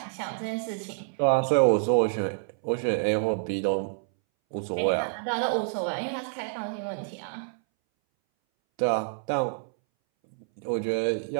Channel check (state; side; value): silent; left; 60 dB below the other